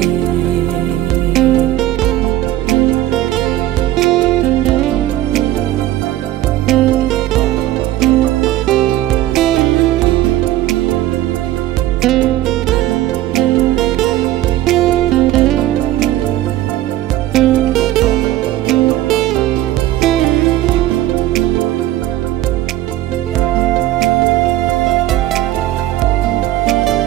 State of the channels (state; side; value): quieter; left; 14.6 dB